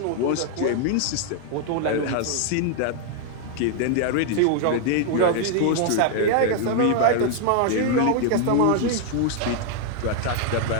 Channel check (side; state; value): both; different; correlation 0.00